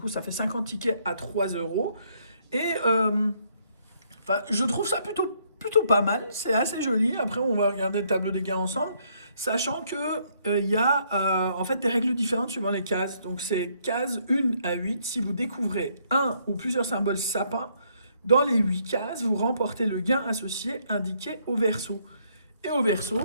ça fait 50 tickets à 3 euros. Et je trouve ça plutôt pas mal, c'est assez joli. Après on va regarder le tableau des gains ensemble, sachant que il y a en fait des règles différentes suivant les cases. Donc c'est case 1 à 8, si vous découvrez un ou plusieurs symboles sapin, dans les 8 cases, vous remportez le gain associé indiqué au verso. Et au verso,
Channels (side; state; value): both; inverted; correlation -0.70